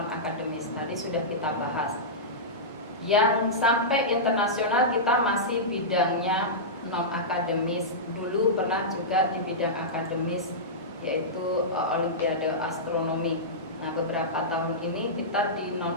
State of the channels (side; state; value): both; normal; correlation -0.14